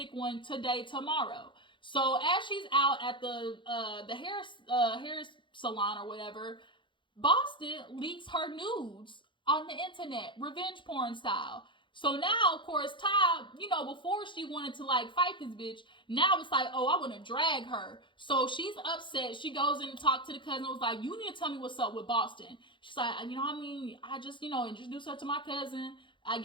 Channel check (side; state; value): right; late; 0.23 ms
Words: one today, tomorrow. So as she's out at the hair salon or whatever, Boston leaks her nudes on the internet, revenge porn style. So now, of course, Ty, before she wanted to, like, fight this bitch, now it's like, oh, I want to drag her. So she's upset. She goes in and talks to the cousin, was like, you need to tell me what's up with Boston. She's like, I just, introduced her to my cousin. I